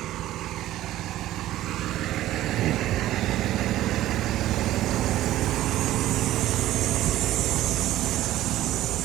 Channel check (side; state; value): left; quieter; 14.4 dB